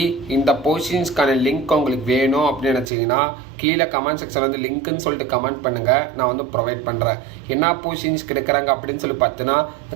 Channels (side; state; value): left; drops out; at 2.9 s